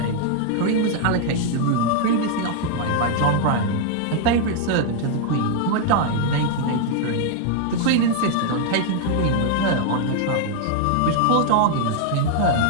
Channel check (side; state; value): both; different; correlation 0.00